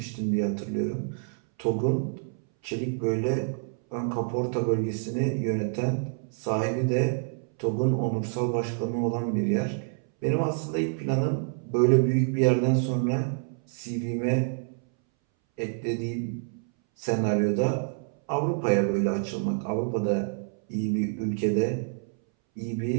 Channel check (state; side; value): silent; left; 60 dB below the other